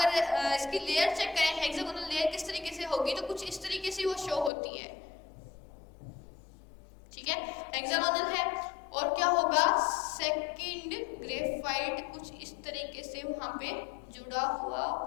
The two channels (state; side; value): drops out; right; at 4.5 s